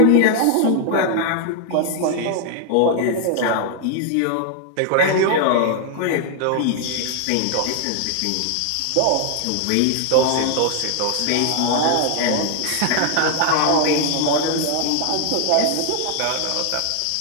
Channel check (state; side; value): different; both; correlation 0.00